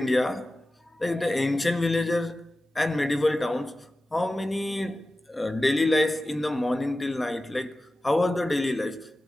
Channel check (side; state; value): both; normal; correlation 0.95